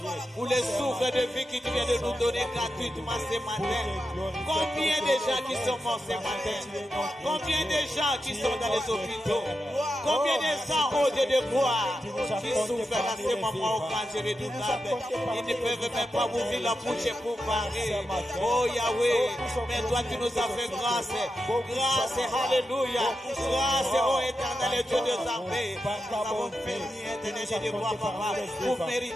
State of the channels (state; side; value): normal; both; correlation 0.88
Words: Pour les souffles de vie qui tu viens de nous donner gratuitement ce matin. Combien de gens qui sont morts ce matin? Combien de gens qui sont dans les hôpitaux? Combien de gens au Dieu de gloire qui souffrent dans ces moments au grand Dieu redoutable? Ils ne peuvent même pas ouvrir la bouche pour parler. Oh Yahweh, mais toi tu nous as fait grâce. Grâce, alléluia. Grâce, oh éternel Dieu des armées. Nous avons fait éternel Dieu de gloire, papa, pour